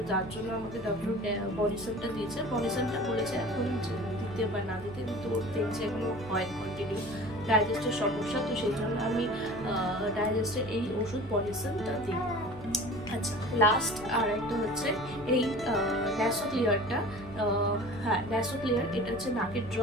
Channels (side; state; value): left; noise; hum, 17 dB below the sound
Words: যার জন্য আমাকে ডক্টর বানিসানটা দিয়েছে। বানিসানটা বলেছে এখন দিতে বা না দিতে, কিন্তু দেখছে এখনো হয় কন্টিনিউ ডাইজেস্টের সমস্যা, তো সেই জন্য আমি ডাইজেস্টের এই ওষুধ বানিসানটা দিই। আচ্ছা, লাস্ট আর একটা হচ্ছে এই ন্যাসোক্লিয়ারটা। হ্যাঁ, ন্যাসোক্লিয়ার, এটা হচ্ছে নাকের